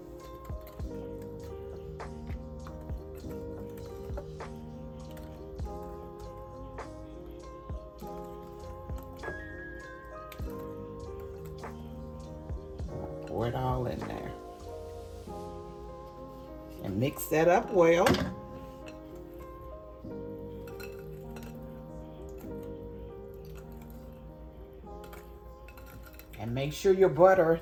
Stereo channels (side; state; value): both; identical; correlation 1.00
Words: Pour it all in there. And mix that up well. And make sure your butter